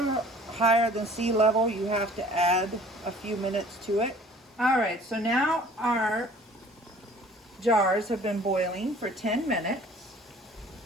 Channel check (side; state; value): both; normal; correlation 0.51